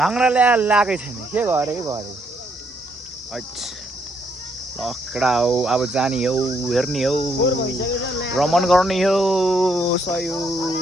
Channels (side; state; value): both; normal; correlation 0.73